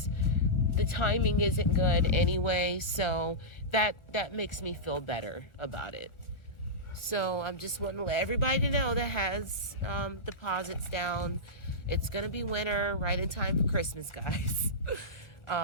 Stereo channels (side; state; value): right; late; 1.4 ms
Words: the timing isn't good anyway, so that makes me feel better about it. So I'm just wanting to let everybody know that has deposits down. It's gonna be winter, right in time for Christmas, guys.